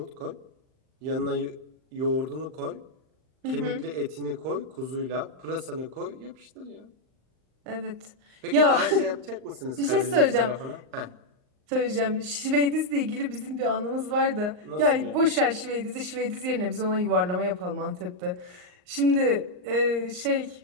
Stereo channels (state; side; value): late; left; 39 ms